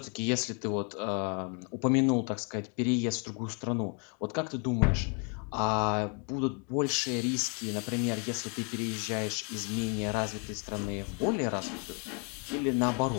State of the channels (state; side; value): quieter; right; 37.3 dB